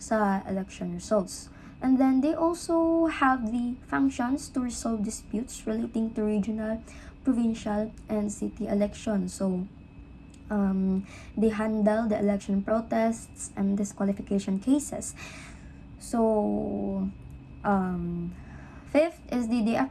election results. And then, they also have the functions to resolve disputes relating to regional, provincial, and city elections. So, they handle the election protests and disqualification cases. So, fifth is they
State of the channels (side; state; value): both; identical; correlation 1.00